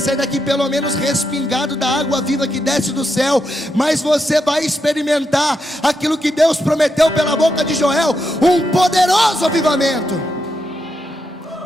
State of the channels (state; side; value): normal; both; correlation 0.83